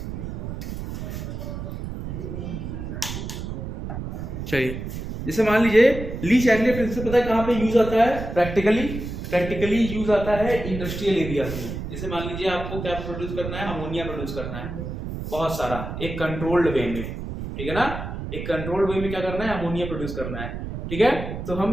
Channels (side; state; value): right; noise; rumble, 7 dB below the sound